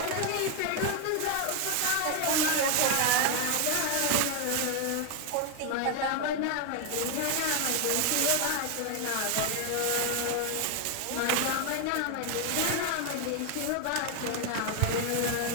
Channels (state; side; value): different; both; correlation 0.01